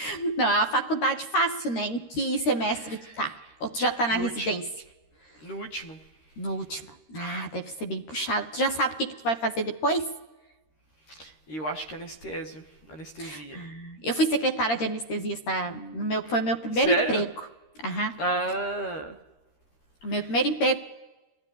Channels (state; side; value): late; right; 13 ms